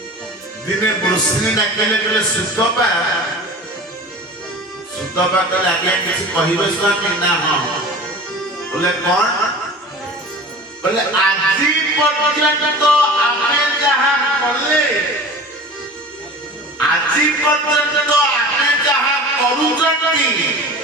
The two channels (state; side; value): normal; both; correlation 0.37